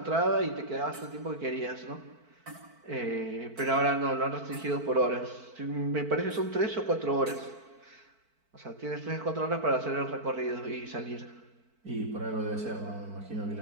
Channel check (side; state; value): left; late; 4.5 ms